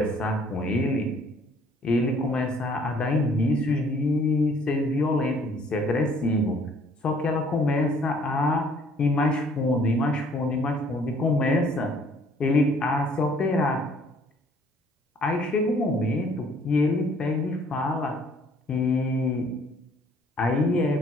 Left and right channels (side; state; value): both; normal; correlation 0.59